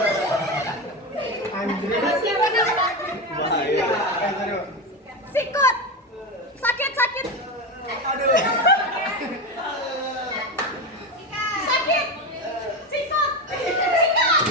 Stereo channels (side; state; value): both; normal; correlation 0.18